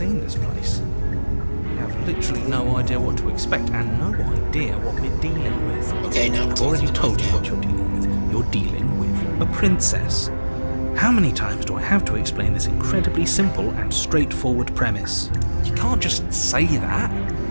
this place? You have literally no idea what to expect and no idea what we're dealing with. Okay, now I've already told you what you're dealing with. You're dealing with a princess. How many times do I have to explain this incredibly simple and straightforward premise? You can't just say that,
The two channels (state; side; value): inverted; both; correlation -1.00